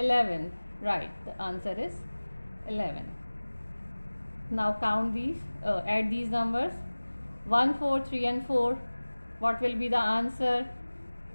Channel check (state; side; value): inverted; both; correlation -1.00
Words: Right, the answer is 11. Now count these, add these numbers. 1, 4, 3 and 4. What will be the answer?